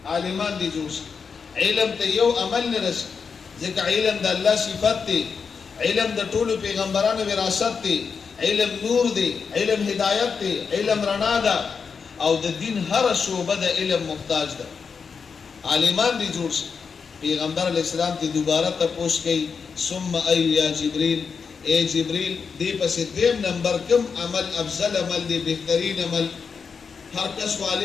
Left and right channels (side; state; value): right; quieter; 5.7 dB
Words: عالمان دي جوړ شي، علم ته یو عمل نه رسي، ځکه علم د الله صفت دی، علم د ټولو پیغمبرانو وراثت دی، علم نور دی، علم هدایت دی، علم رڼا ده، او د دین هر شعبه د علم محتاج ده. عالمان دي جوړ شي. پیغمبر علیہ السلام تی دوبارہ تپوش کئی ثم ای یا جبریل، اے جبریل دی پس دیم نمبر کم عمل افضل عمل دی، بہترین عمل؟ ہر کس کو